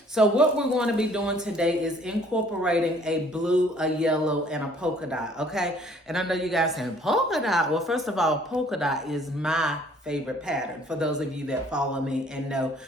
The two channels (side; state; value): both; normal; correlation 0.58